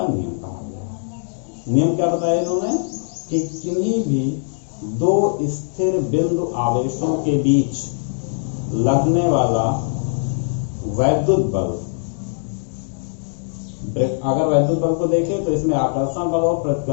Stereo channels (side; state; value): right; silent; digital silence